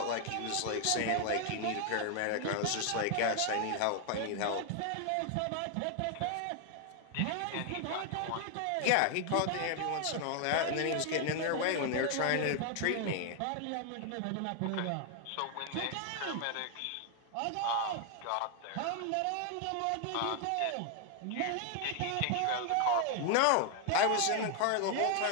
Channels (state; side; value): different; both; correlation 0.00